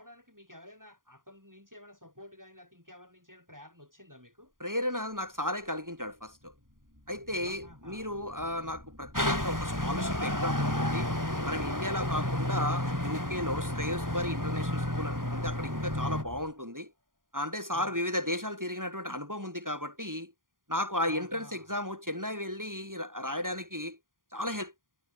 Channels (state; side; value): late; left; 0.90 ms